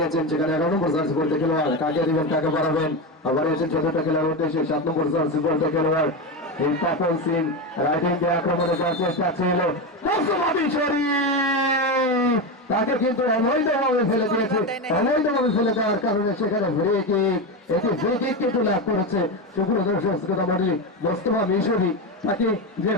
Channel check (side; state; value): both; normal; correlation 0.15